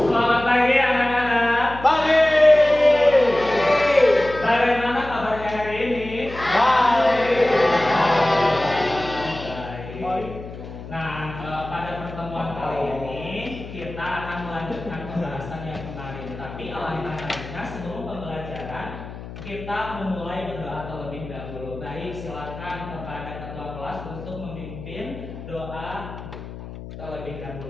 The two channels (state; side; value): noise; left; hum, 12 dB below the sound